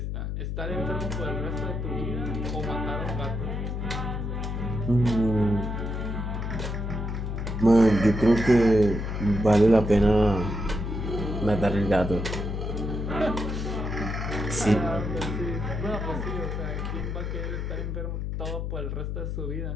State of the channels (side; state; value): left; noise; hum, 3 dB below the sound